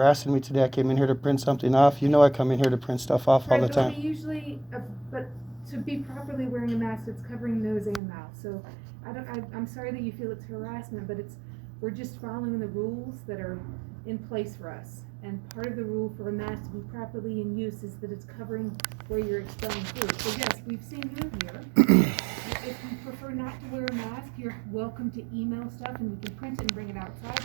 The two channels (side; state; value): left; drops out; at 8.0 s